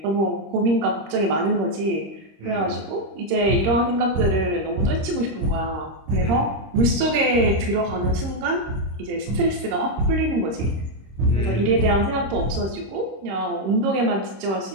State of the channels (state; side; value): late; left; 26 ms